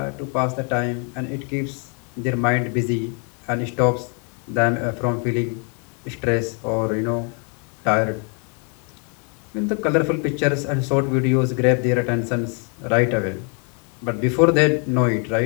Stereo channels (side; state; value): right; quieter; 38.3 dB